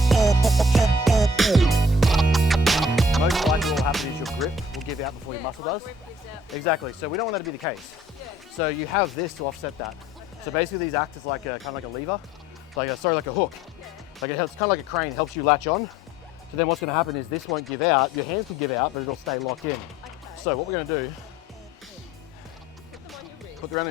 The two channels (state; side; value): normal; both; correlation 0.56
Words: Most likely what will happen is your grip will give out before your muscle does. Exactly, so we don't want that to be the case. So you have this to offset that. So basically these act as like a kind of like a lever, like a hook. Like it's kind of like a crane, helps you latch on. So then what's going to happen is this won't give out. Your hands can give out, but it'll stay locked in. So what we're going to do, put them on your wrist. Put them around